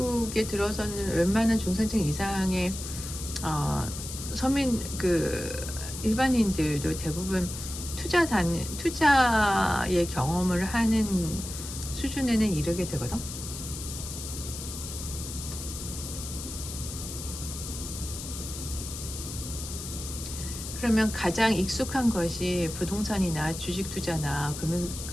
들어서는 웬만한 중산층 이상의 어, 서민 일반인들도 대부분 투자의 경험을 하는 수준에는 이르게 되거든. 그러면 가장 익숙한 것이 부동산이나 주식 투자나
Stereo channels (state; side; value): noise; left; hiss, 9 dB below the sound